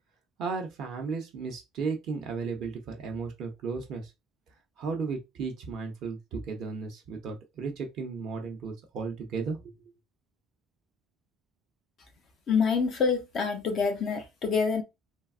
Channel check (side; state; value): both; normal; correlation 0.53